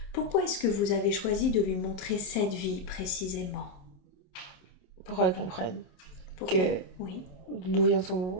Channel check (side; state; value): right; late; 27 ms